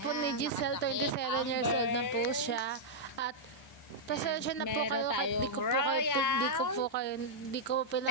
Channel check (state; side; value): normal; both; correlation -0.07